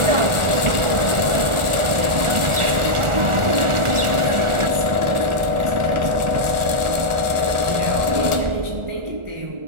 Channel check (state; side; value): late; left; 1.4 ms